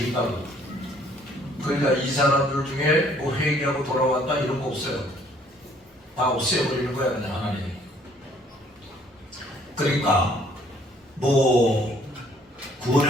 그러니까 이 사람들 중에 뭐 회개하고 돌아왔다 이런 거 없어요. 다 없애버리는 거야 그냥 하나님이. 그러니까 뭐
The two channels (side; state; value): both; normal; correlation 0.61